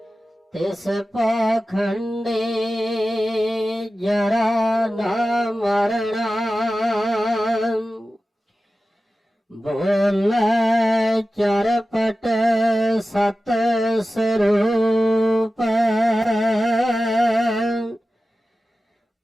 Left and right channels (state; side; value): normal; both; correlation 0.94